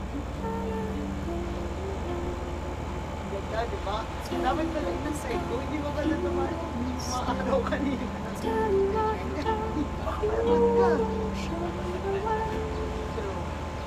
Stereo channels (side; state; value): both; identical; correlation 1.00